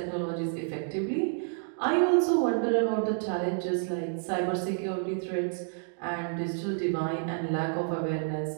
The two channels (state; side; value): silent; left; digital silence